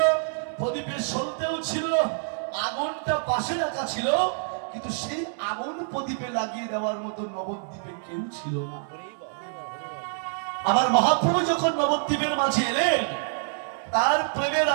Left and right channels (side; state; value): left; silent; digital silence